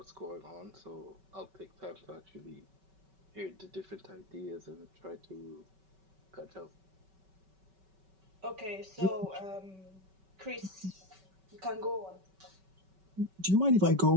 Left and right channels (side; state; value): left; late; 5.3 ms